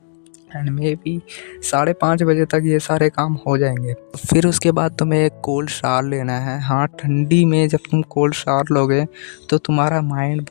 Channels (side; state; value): right; silent; digital silence